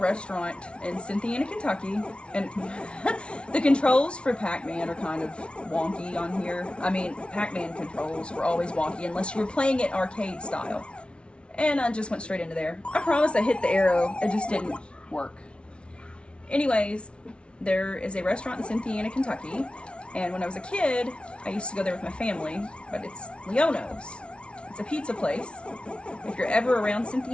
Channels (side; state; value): right; late; 0.058 ms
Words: in Cynthiana, Kentucky, and the controls for Pac-Man are kind of wonky on here. I mean, Pac-Man controls were always wonky unless you were playing it arcade style. And I just went straight into there. I promise I hit the arrow, it just didn't work. Anyways, there is a restaurant in Cynthiana, Kentucky, and when I was a kid, I used to go there with my family, but it's Leono's. It's a pizza place. If you're ever around